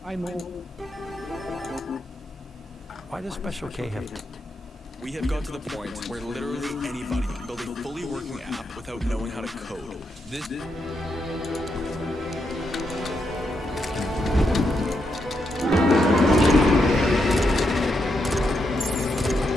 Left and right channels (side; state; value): both; normal; correlation 0.82